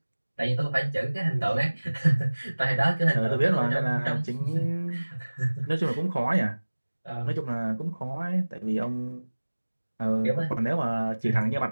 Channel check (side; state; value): both; inverted; correlation -1.00